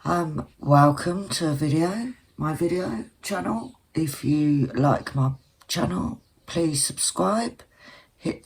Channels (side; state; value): both; identical; correlation 1.00